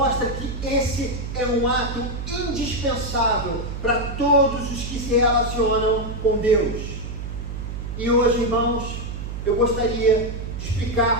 que esse é um ato indispensável para todos os que se relacionam com Deus. E hoje, irmãos, eu gostaria de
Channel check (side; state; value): right; noise; hum, 6 dB below the sound